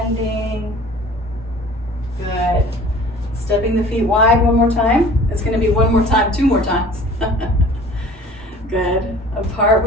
Good. Stepping the feet wide one more time. It's going to be one more time, 2 more times. Good. Apart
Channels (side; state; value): both; normal; correlation 0.47